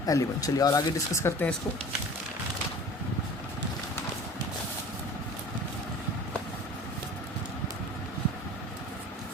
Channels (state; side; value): normal; both; correlation 0.42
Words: एलिमेंट। चलिए और आगे डिस्कस करते हैं इसको।